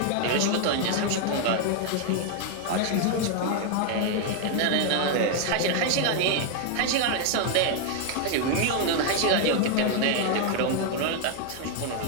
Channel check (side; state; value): both; different; correlation 0.01